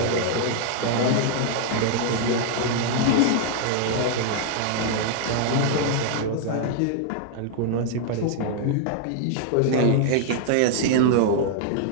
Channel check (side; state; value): both; different; correlation 0.00